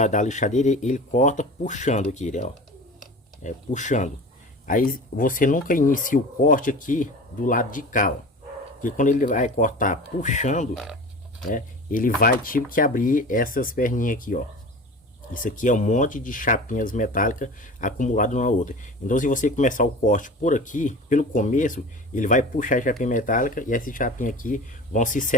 lixadeira, ele corta puxando aqui, né, ó. Puxando. Aí você nunca inicia o corte aqui do lado de cá, ó. Porque quando ele vai cortar puxando, né, ele vai tipo que abrir essas perninhas aqui, ó. Isso aqui é um monte de chapinhas metálicas acumulado uma outra. Então se você começar o corte por aqui, pelo começo, ele vai puxar a chapinha metálica e essas chapinhas aqui vão se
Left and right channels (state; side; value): normal; both; correlation 0.36